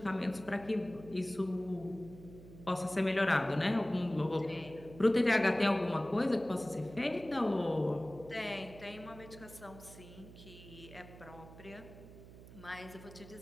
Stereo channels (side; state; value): right; noise; hum, 17 dB below the sound